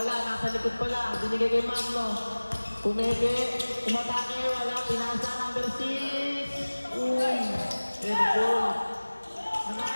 Nasa likod pala. Binigay kay Magno. Pumeke, umatake, wala, pinasa number 6. Uy, airball.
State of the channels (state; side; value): inverted; both; correlation -1.00